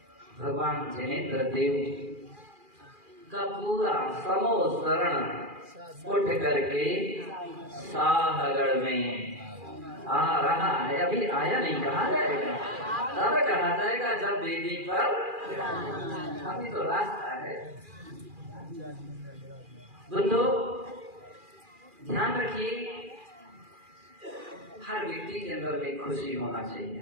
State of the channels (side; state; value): left; late; 2.4 ms